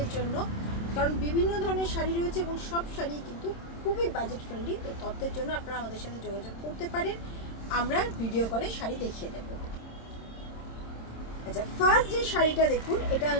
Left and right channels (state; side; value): late; right; 26 ms